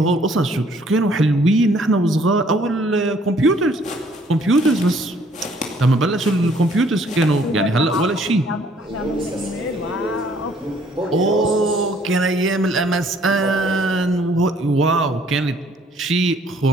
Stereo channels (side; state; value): both; normal; correlation 0.62